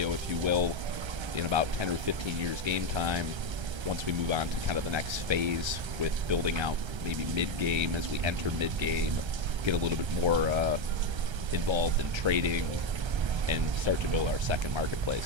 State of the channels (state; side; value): late; left; 1.3 ms